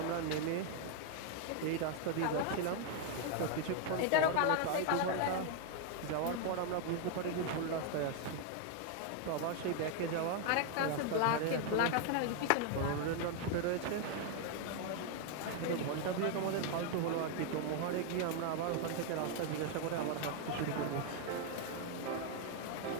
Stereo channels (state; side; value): different; both; correlation 0.01